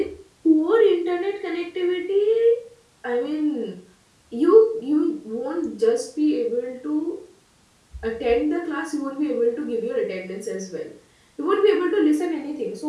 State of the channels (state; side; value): identical; both; correlation 1.00